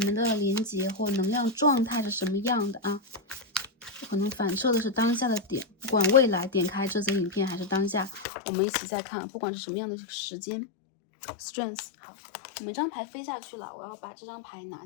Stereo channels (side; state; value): right; drops out; at 8.2 s